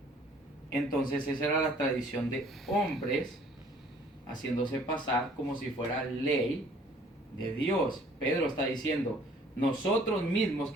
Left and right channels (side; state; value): both; normal; correlation 0.56